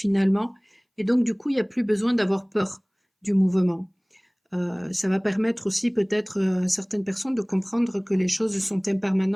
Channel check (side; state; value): both; identical; correlation 1.00